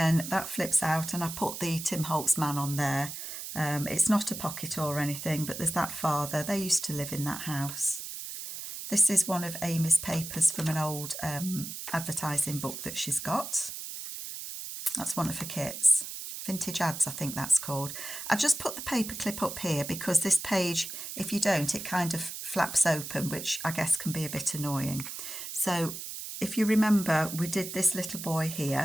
that flips out, and I put the Tim Holtz man on there. It's not a pocket or anything, but there's that father. They used to live in that house. This is one of Amy's papers from an old advertising book that she's got. That's one of her kits. Vintage Ads, I think that's called. I just put the paper clip up here because this page, if you don't, it kind of flaps open, which I guess can be a bit annoying. So if you remember, we did this little boy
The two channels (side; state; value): right; noise; hiss, 8 dB below the sound